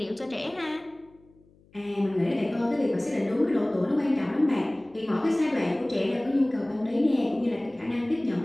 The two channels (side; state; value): left; noise; hum, 30 dB below the sound